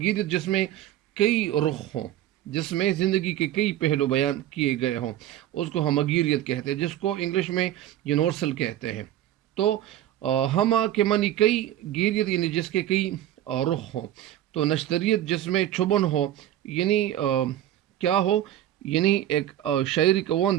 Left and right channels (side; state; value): left; quieter; 12.5 dB